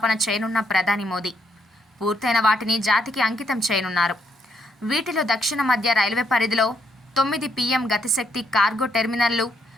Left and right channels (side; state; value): both; normal; correlation 0.74